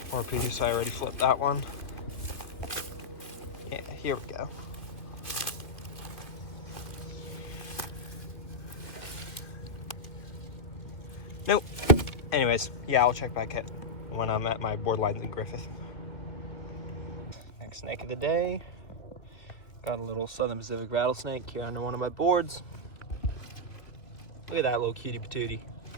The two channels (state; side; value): late; right; 2.7 ms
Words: more piece. I already flipped that one. Yeah, here we go. Nope. Anyways, yeah, I'll check back when I'm at my board lines in Griffith. Next snake of the day. Got a little Southern Pacific rattlesnake here under one of my boards. Look at that little cutie patootie.